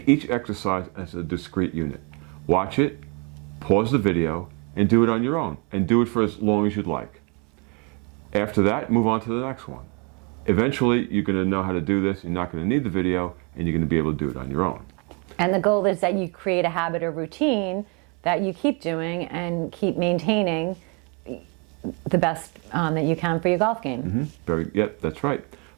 each exercise as a discrete unit. Watch it, pause the video, and do it on your own, and do it for as long as you'd like. After that, move on to the next one. Eventually, you're going to know how to do this, you're not going to need the video, and you're going to be able to do it on your own. And the goal is that you create a habit or routine that you keep doing and keep maintaining the best that you can for your golf game. Yep, that's right.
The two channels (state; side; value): quieter; left; 33.0 dB